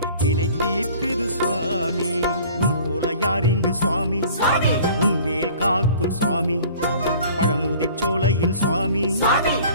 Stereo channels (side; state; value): both; inverted; correlation -0.48